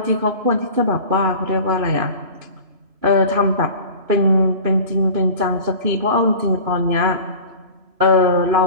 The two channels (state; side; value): late; left; 3.0 ms